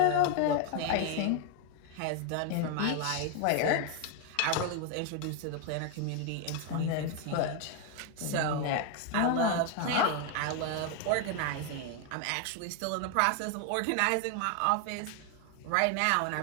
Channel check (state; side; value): different; both; correlation 0.01